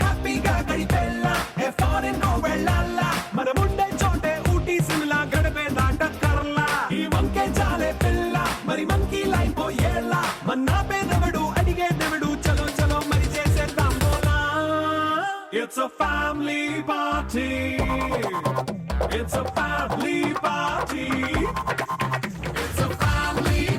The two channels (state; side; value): identical; both; correlation 1.00